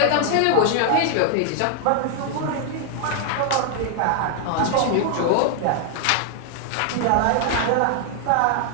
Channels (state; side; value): different; both; correlation 0.00